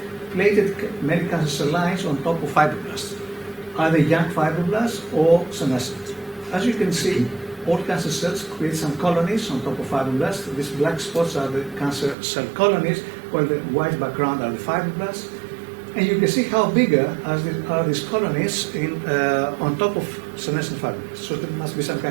plated many cancer cell lines on top of fibroblasts, either young fibroblasts or senescent. As you can see, all cancer cells create some colonies on top of fibroblasts. These black spots are the cancer cell colonies, while the white background are the fibroblasts. And you can see how bigger are these colonies on top of senescent fibroblasts. So there must be some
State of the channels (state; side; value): drops out; left; at 12.2 s